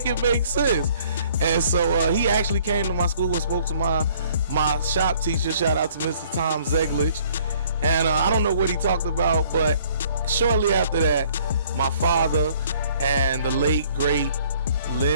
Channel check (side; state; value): both; inverted; correlation -0.58